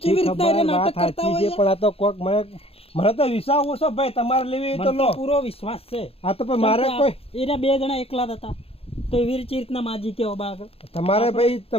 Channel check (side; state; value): right; late; 0.28 ms